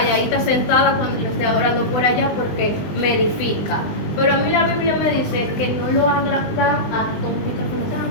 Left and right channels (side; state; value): right; late; 20 ms